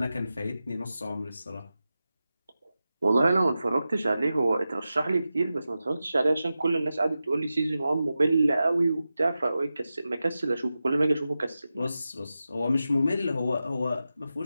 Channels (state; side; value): inverted; both; correlation -0.92